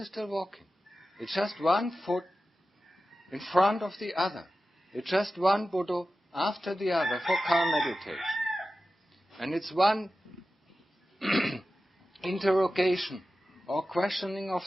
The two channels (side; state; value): both; normal; correlation 0.94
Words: still walking. It's just one foot in front of the other. It's just one Buddha after the other for calm meditation. And it's one interrogation or questioning of